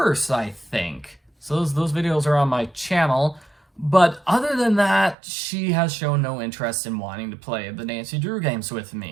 I think. So those videos are on my channel. But other than that, she has shown no interest in wanting to play the Nancy Drew games with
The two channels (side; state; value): left; drops out; at 5.2 s